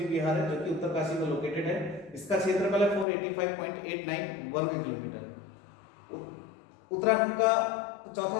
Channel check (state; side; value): drops out; right; at 3.1 s